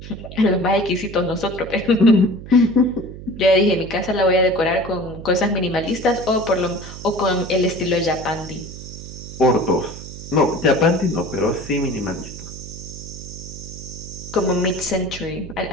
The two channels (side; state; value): right; noise; hum, 13 dB below the sound